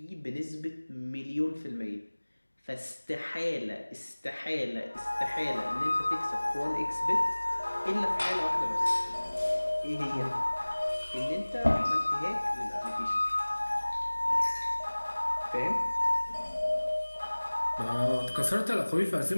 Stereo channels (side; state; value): both; inverted; correlation -1.00